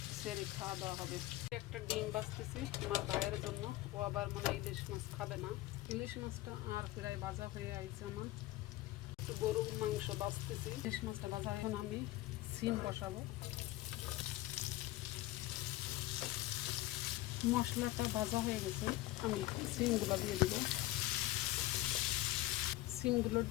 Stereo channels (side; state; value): right; quieter; 17.2 dB